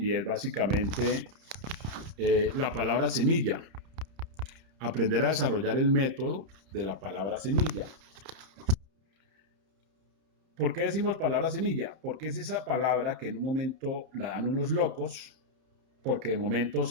es básicamente la palabra semilla. Aprender a desarrollar el método de la palabra semilla. ¿Por qué decimos palabra semilla? Porque es esa palabra que en un momento la dan unos locos, porque de momento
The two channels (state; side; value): late; left; 31 ms